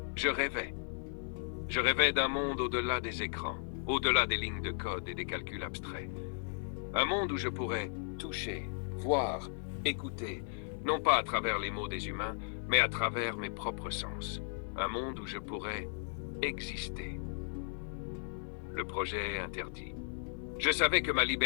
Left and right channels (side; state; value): right; silent; digital silence